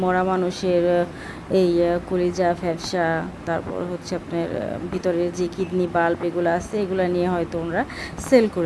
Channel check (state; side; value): identical; both; correlation 1.00